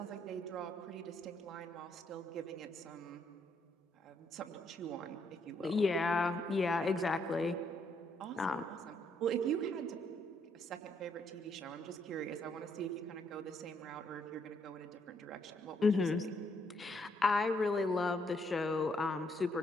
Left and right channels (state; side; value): normal; both; correlation 0.73